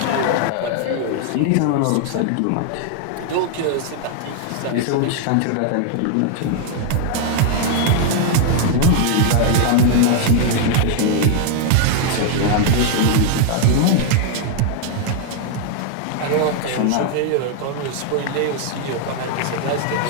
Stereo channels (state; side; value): different; both; correlation 0.00